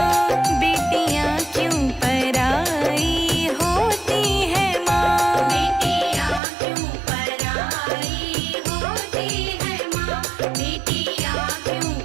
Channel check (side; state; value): left; drops out; at 6.4 s